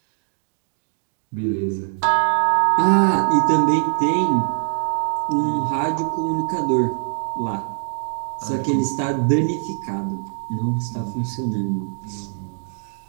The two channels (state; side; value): silent; left; digital silence